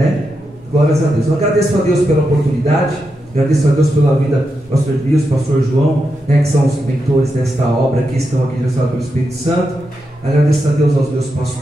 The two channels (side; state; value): both; normal; correlation 0.86